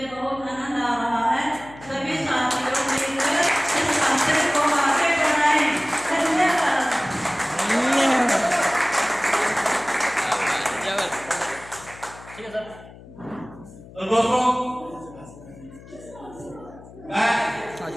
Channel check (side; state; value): left; noise; hum, 19 dB below the sound